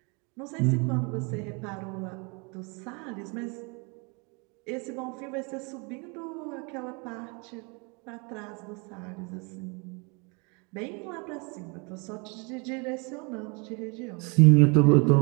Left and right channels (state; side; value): quieter; left; 31.8 dB